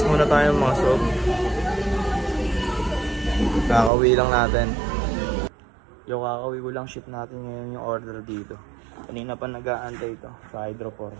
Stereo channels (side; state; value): left; drops out; at 3.9 s